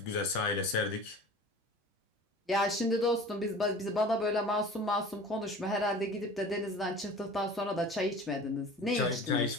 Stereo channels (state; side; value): normal; both; correlation 0.41